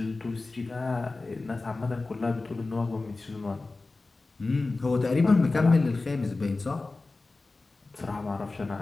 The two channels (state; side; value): quieter; right; 3.5 dB